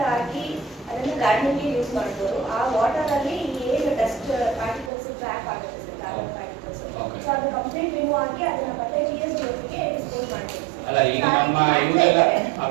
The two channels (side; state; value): left; drops out; at 4.9 s